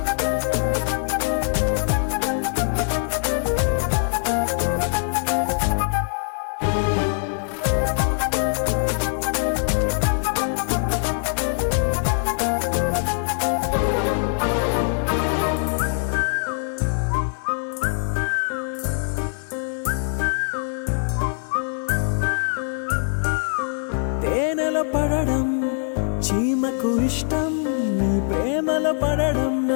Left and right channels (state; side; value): silent; right; 64 dB below the other